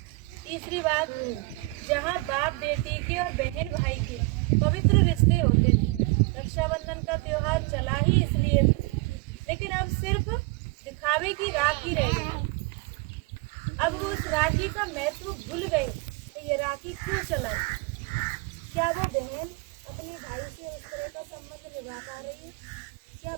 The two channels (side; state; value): left; quieter; 24.7 dB